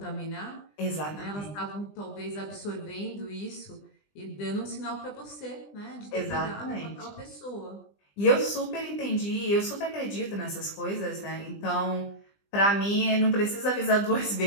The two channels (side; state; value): right; late; 20 ms